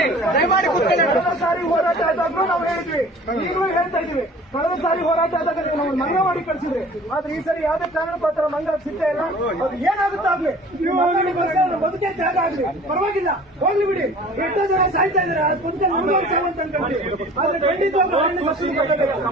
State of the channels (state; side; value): normal; both; correlation 0.46